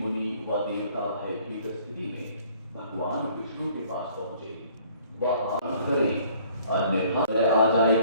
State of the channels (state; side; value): inverted; both; correlation -0.58